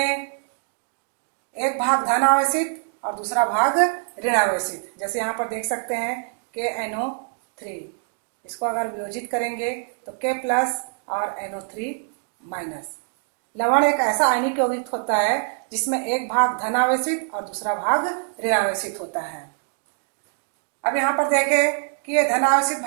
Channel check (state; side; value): silent; left; 62 dB below the other